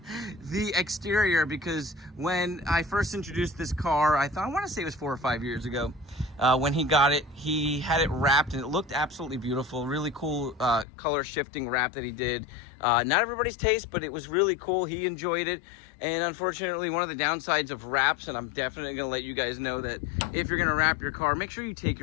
exterior, because when I first introduced this car, I want to say it was 4 or 5 years ago, when he got it, he had it wrapped, and it looked absolutely beautiful. Really cool color shifting wrap that he did. Not everybody's taste, but it was really cool. He enjoyed it. And unfortunately, one of the downsides of wraps, and I'm definitely going to let you guys know that if you're going to wrap your car, make sure you take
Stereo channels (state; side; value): drops out; right; at 10.9 s